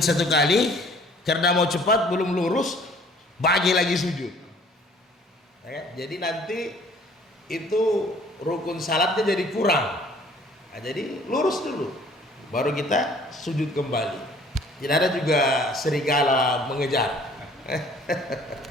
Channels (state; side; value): normal; both; correlation 0.55